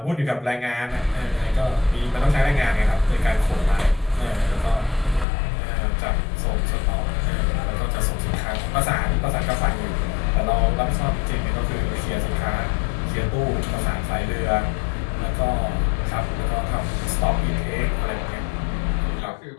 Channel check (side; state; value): right; drops out; at 5.2 s